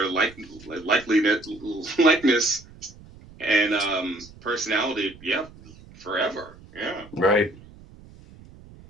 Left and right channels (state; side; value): noise; right; rumble, 21 dB below the sound